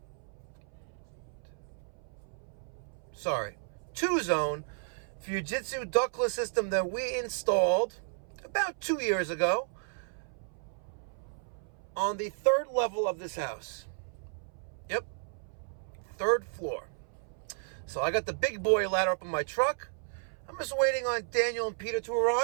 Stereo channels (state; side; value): silent; left; 56 dB below the other